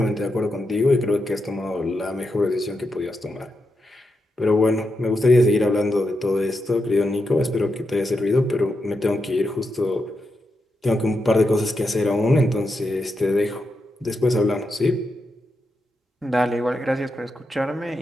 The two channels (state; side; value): normal; both; correlation 0.85